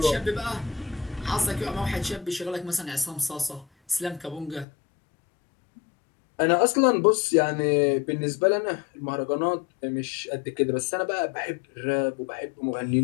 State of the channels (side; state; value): right; drops out; at 4.7 s